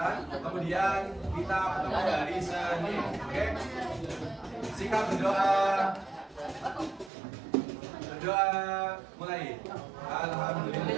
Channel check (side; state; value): left; drops out; at 7.1 s